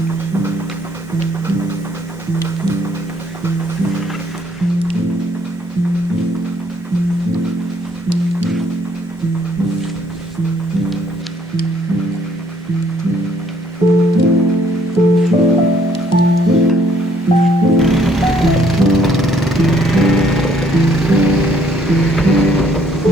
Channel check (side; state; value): both; normal; correlation 0.65